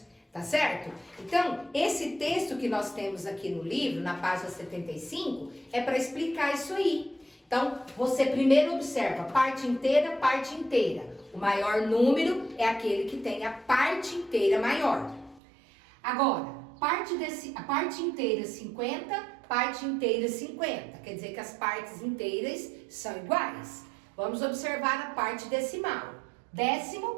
tá certo? Então, esse texto que nós temos aqui no livro, na página 75, é para explicar isso aí. Então, você primeiro observa parte inteira, parte inteira. O maior número é aquele que tem a parte inteira maior. Agora, a parte inteira 50, parte inteira 50. Quer dizer que as partes inteiras são iguais. Vamos observar a parte decimal.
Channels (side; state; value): left; drops out; at 15.4 s